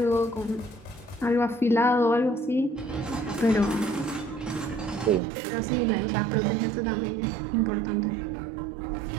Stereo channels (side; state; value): left; drops out; at 5.2 s